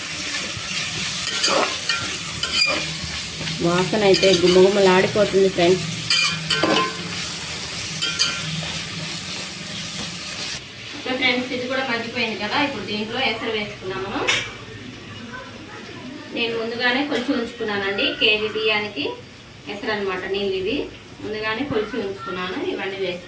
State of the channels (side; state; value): both; identical; correlation 1.00